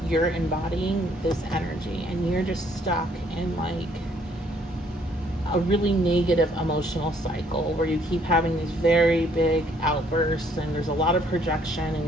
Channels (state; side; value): normal; both; correlation 0.64